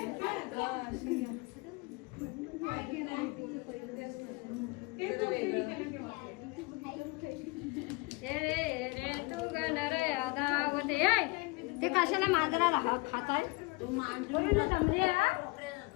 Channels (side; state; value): right; quieter; 25.7 dB